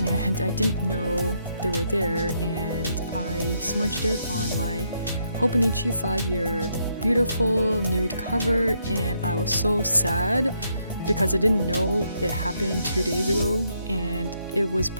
I didn't know they were there, and I smudged it on my Hobonichi 5-year beautiful nude cover, and I was so sad because I didn't know it happened 2 days ago, and it was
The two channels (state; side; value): inverted; both; correlation -0.75